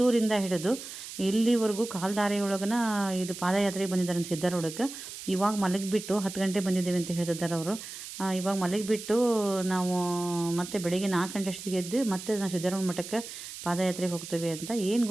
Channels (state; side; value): noise; right; hiss, 11 dB below the sound